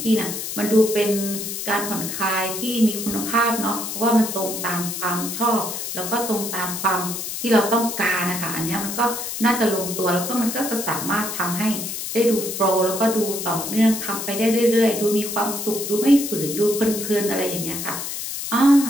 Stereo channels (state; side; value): noise; left; hiss, 5 dB below the sound